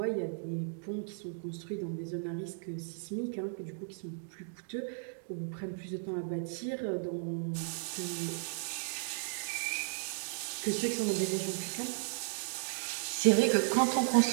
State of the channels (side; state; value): left; silent; digital silence